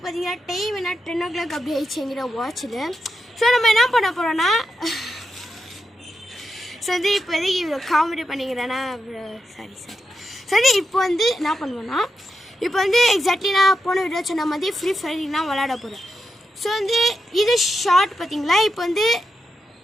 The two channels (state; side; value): normal; both; correlation 0.86